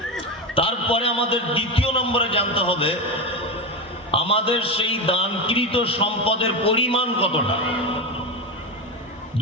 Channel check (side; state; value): both; normal; correlation 0.17